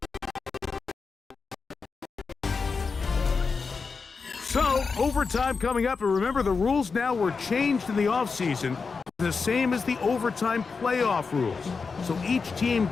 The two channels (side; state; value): right; quieter; 4.9 dB